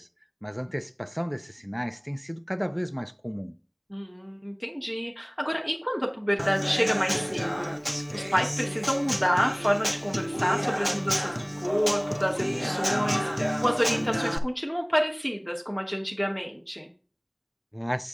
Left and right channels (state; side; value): identical; both; correlation 1.00